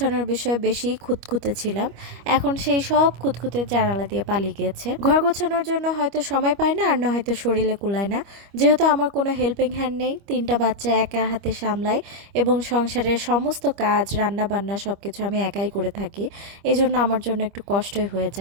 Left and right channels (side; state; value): left; late; 25 ms